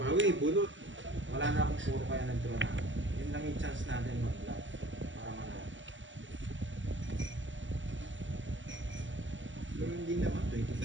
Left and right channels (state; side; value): late; left; 0.55 ms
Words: bunot. Wala na akong puro kaya nag-draw na ako. Yun lang yung chance natin mag-love. Para manalo. Pero hindi naman,